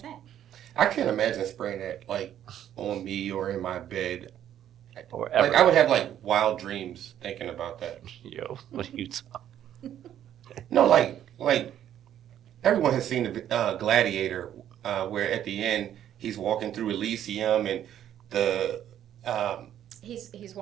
I can't imagine spraying that like on me or in my bed. Or Like ever. I would have like wild dreams thinking about that. Yo, what are you talking? No, like everyone has seen the Gladiator, where at the end he's walking through Elysium and the He's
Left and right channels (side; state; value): left; quieter; 10.8 dB